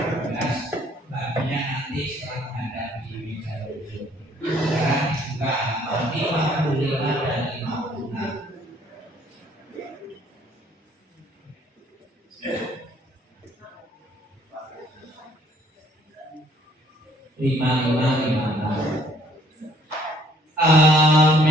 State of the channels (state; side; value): normal; both; correlation 0.62